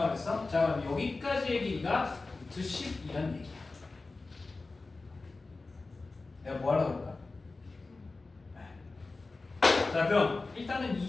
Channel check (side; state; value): right; quieter; 3.6 dB